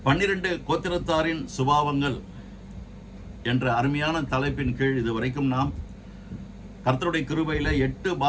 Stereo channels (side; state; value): both; identical; correlation 1.00